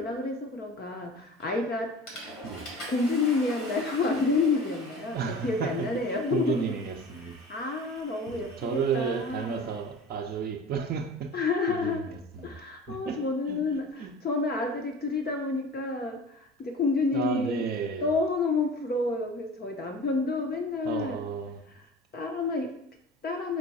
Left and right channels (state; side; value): normal; both; correlation 0.39